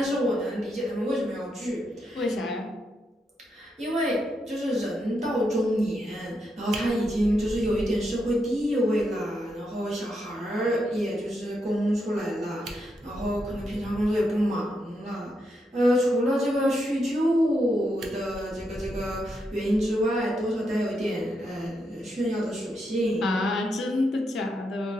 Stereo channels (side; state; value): both; normal; correlation 0.82